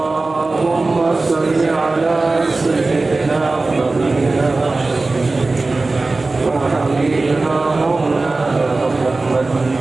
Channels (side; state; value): left; quieter; 3.4 dB